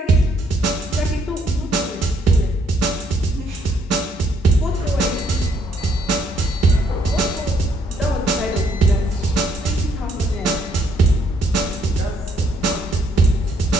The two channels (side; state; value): both; normal; correlation 0.70